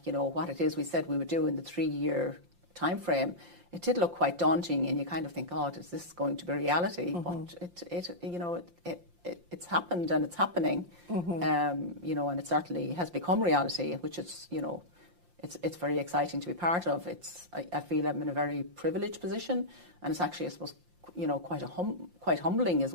what it is we said we would do in the 3-year time frame, it did look quite daunting, and you kind of think, oh, is this going to be reality? But it's happened and it's happening, and it certainly has become reality, which is, it's very exciting to be part of. I feel I'm in a very privileged position, and it's actually, I suppose, quite humbling as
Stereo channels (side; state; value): left; late; 5.7 ms